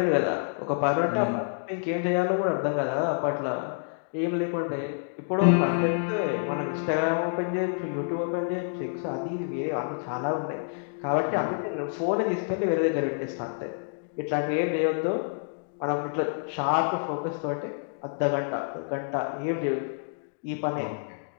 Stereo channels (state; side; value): silent; right; digital silence